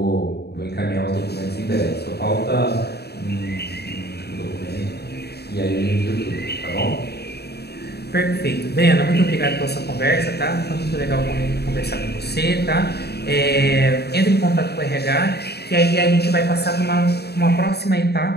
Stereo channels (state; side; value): late; right; 0.47 ms